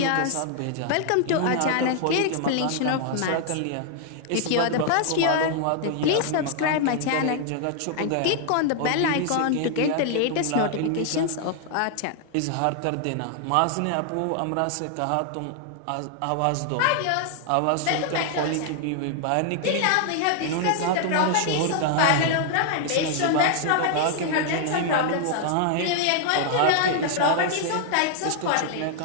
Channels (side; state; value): both; different; correlation 0.00